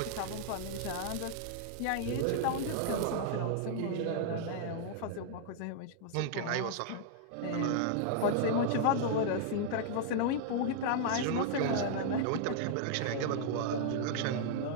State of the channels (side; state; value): both; different; correlation -0.01